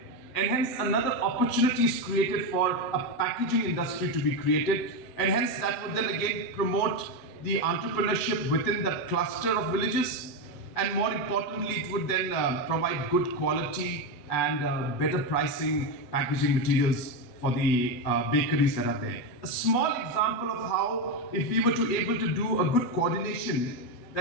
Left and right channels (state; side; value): late; right; 8.1 ms